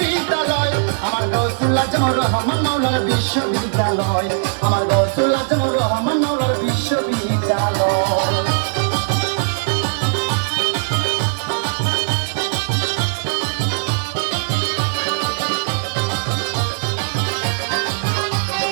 আমার গৌসুল আজম রহমান মাওলার বিশ্ববিদ্যালয় আমার গৌসুল আজম রহমান মাওলার বিশ্ববিদ্যালয়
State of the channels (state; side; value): silent; left; 58 dB below the other